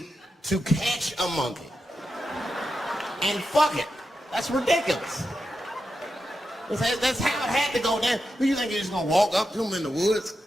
to catch a monkey and fuck it. That's ridiculous. That's how it had to go down. Who you think you're just gonna walk up to him in the woods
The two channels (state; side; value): normal; both; correlation 0.88